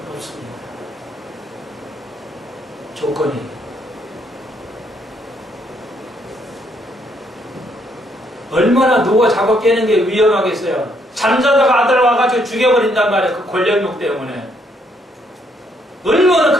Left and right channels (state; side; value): normal; both; correlation 0.71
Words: 없습니다. 조건이. 얼마나 누가 자고 깨는 게 위험하겠어요. 잠자다가 아들 와가지고 죽여버린단 말이에요. 그 권력욕 때문에. 얼마나